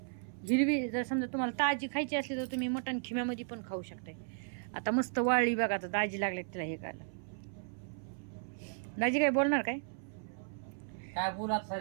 हिरवी जर समजा तुम्हाला ताजी खायची असली तर तुम्ही मटण खिम्यामध्ये पण खाऊ शकताय. आता मस्त वाळली बघा. आता दाजी लागले तिला हे खायला. दाजी काय बोलणार काय? काय बोलात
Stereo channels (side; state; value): left; silent; 54 dB below the other